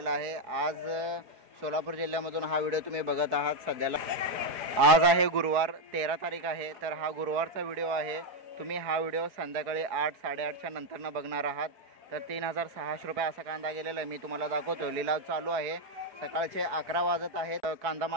आहे. आज सोलापूर जिल्ह्यामधून हा व्हिडिओ तुम्ही बघत आहात. सध्याला आज आहे गुरुवार 13 तारीख आहे, तर हा गुरुवारचा व्हिडिओ आहे. तुम्ही हा व्हिडिओ संध्याकाळी 8 साडेआठच्या नंतरनं बघणार आहात. तर 3600 रुपये असा कांदा गेलेला आहे. मी तुम्हाला दाखवतो. लिलाव चालू आहे. सकाळचे 11 वाजत आहेत. कांदा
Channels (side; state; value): left; late; 4.5 ms